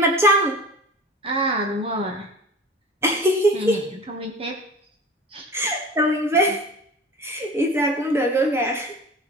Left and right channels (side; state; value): both; normal; correlation 0.38